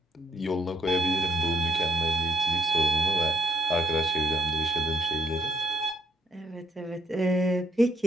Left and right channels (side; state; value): both; normal; correlation 0.69